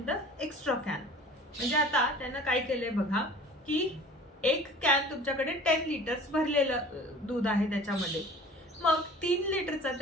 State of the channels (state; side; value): normal; both; correlation 0.44